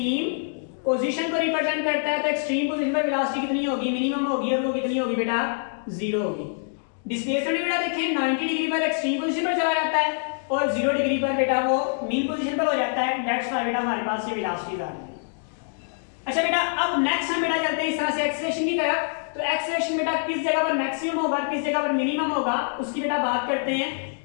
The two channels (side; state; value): right; silent; digital silence